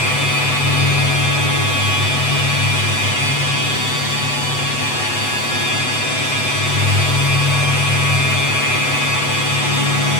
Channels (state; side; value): late; right; 8.0 ms